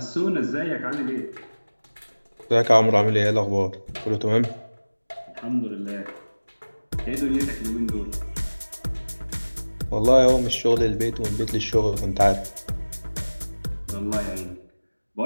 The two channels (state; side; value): inverted; both; correlation -1.00